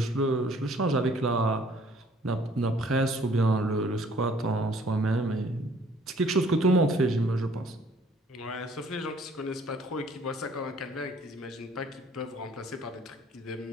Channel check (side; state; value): both; normal; correlation 0.58